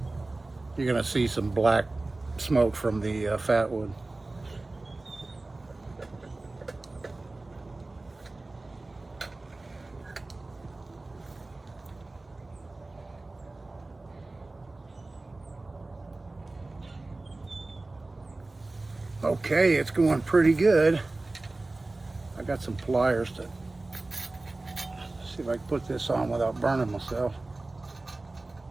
You're gonna see some black smoke from the fat wood. Okay, it's going pretty good. I got some pliers to see if I can put this on without burning myself.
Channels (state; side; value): quieter; left; 3.1 dB